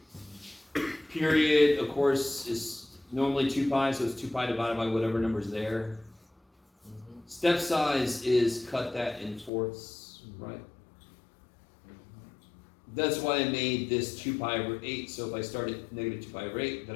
Period, of course, is normally 2 pi, so it's 2 pi divided by whatever number's there. Step size is cut that in fourths, right? That's why I made this 2 pi over 8, so if I start at negative 2 pi over 8, then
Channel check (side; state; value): right; drops out; at 9.5 s